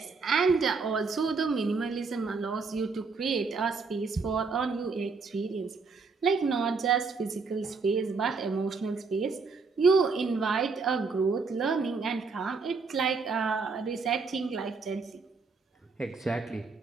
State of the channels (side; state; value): left; quieter; 4.6 dB